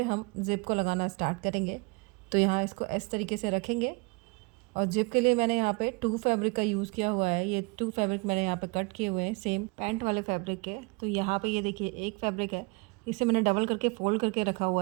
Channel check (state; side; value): quieter; left; 29.3 dB